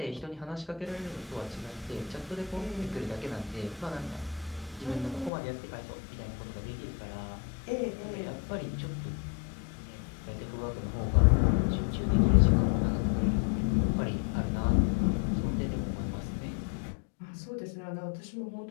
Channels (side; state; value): right; drops out; at 5.3 s